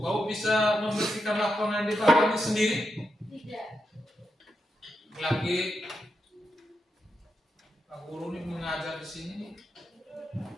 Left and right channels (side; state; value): both; normal; correlation 0.85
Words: kau bisa membersihkan lapangan di bawah ini sendiri? Tidak. Lagi Pak Guru ini mengajar di sini,